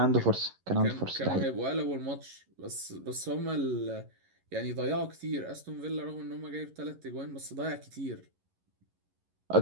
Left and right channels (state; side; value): late; left; 11 ms